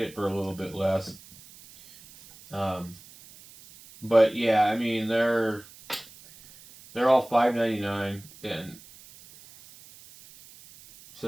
it for a little bit less. But yeah, I mean, they're all $5.99, and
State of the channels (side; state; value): right; noise; hiss, 22 dB below the sound